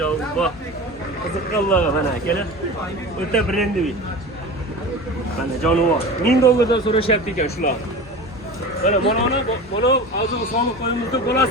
Qiziqqanlar mana akalar. O'ta brendiy. Mana jonivor. $1000 dan so'rashyapti ekan shular. Mana mana hozir soliq qo'yimizda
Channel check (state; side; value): normal; both; correlation 0.32